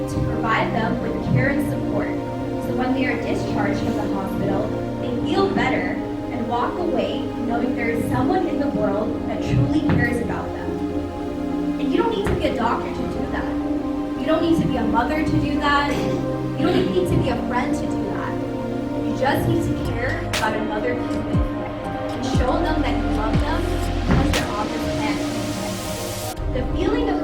to provide them with care and support, so when they are discharged from the hospital, they feel better and walk away knowing there is someone in the world that truly cares about them. And you don't need to be a doctor to do that. You don't need to be a mother to do that. You don't even need to be a friend to do that. You just need to care about another human and show them that you love them because they're on this planet. The feeling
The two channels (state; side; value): identical; both; correlation 1.00